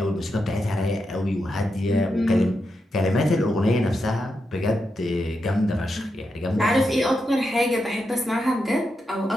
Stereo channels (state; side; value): normal; both; correlation 0.86